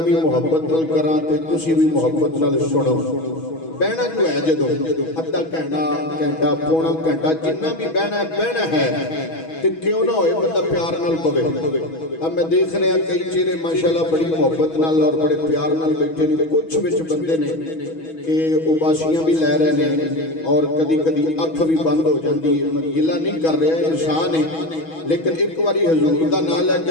भी मुहब्बत नाल करां ते तुसीं भी मुहब्बत नाल सुनो। बहना जो है जदों अद्धा घंटा पौना घंटा जिन्ना भी बहना है ते क्यों ना होए बंदा प्यार नाल पवे। अब मैं देख रहा कई चेहरे माशाल्लाह बड़ी मुहब्बत नाल और बड़े प्यार नाल बैठे ने। कुछ विच बंदे ने कि उबासियां भी लै रहे ने और कदी कदी अख भी बंद हो जाती है। मैं गिला नहीं कर रहा, इंसान है, लेकिन एक बारी हजूर का नाम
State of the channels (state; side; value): late; right; 6.2 ms